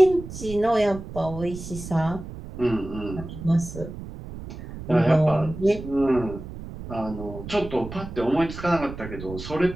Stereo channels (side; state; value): right; noise; rumble, 11 dB below the sound